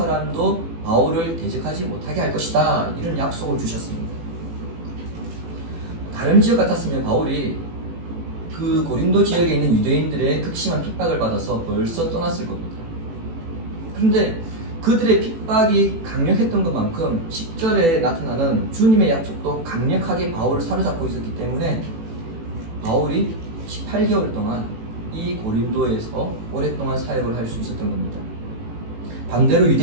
바울을 대적하지 못하게 할 것이다. 이런 약속을 주셨습니다. 다른 지역 같았으면 바울이 그 고린도 지역에 있는 유대인들의 극심한 핍박을 받아서 벌써 떠났을 겁니다. 그런데 그들의 핍박이 강력했던 것만큼 10절에 나타나는 주님의 약속도 강력하게 바울을 사로잡고 있었기 때문에 바울이 18개월 동안 이 고린도에서 오랫동안 사역을 할 수 있었던 겁니다. 반대로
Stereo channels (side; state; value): left; late; 18 ms